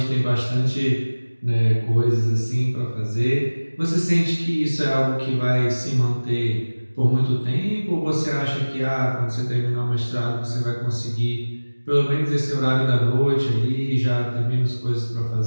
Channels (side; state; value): both; inverted; correlation -1.00